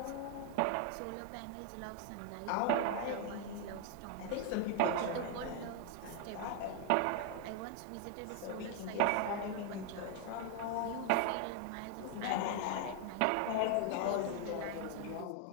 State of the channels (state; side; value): different; both; correlation 0.01